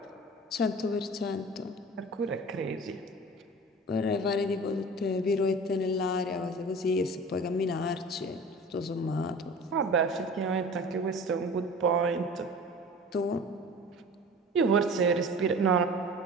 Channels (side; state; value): both; normal; correlation 0.39